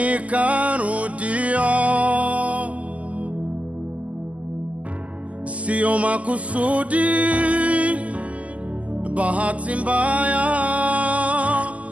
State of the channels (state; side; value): late; left; 0.070 ms